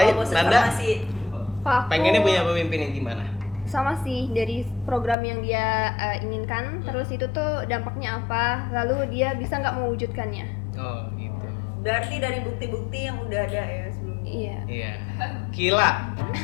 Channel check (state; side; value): drops out; right; at 5.2 s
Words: Oh, bosan Nanda farmasi. Kalau aku pengennya punya pemimpin yang gimana? sama sih, dari program yang dia inginkan, terus itu tuh dampaknya apa, lalu dia bisa nggak mewujudkannya. Oh gitu. Berarti dari bukti-bukti yang udah ada ya sebelumnya. Iya. Iya. Kila.